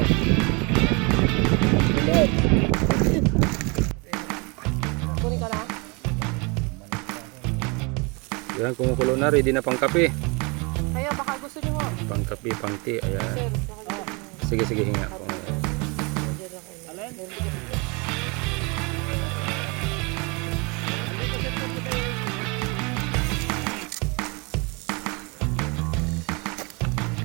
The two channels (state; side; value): quieter; left; 29.8 dB